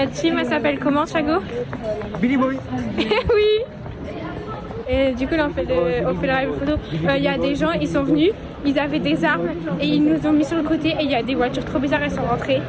team, elle s'appelle comment, Chago? Billy Boy. Oui. Et du coup, là, on fait le rallye photo. Il y a des gens, ils sont venus, ils avaient des armes et ils nous ont mis sur le côté. Et il y a des voitures trop bizarres, elles sont rentrées.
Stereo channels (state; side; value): identical; both; correlation 1.00